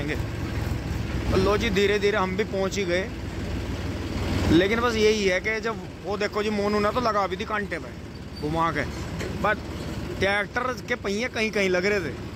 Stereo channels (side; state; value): both; identical; correlation 1.00